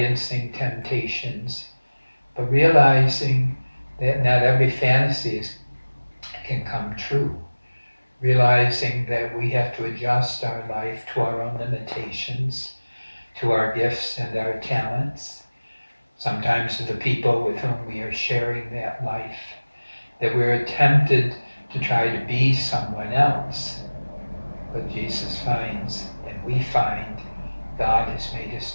temptations, but realizing that not every fantasy can come true, realizing that we have to adjust our life to our own limitations, to our gifts and our talents, sometimes to the people with whom we are sharing that life, that we're tempted to try to be someone else. But Jesus finds, and we find, God has made us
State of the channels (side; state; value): both; inverted; correlation -1.00